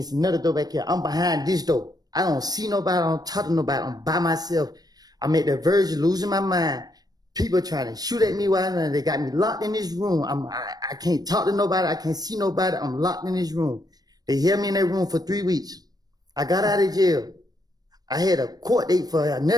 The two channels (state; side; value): late; left; 0.19 ms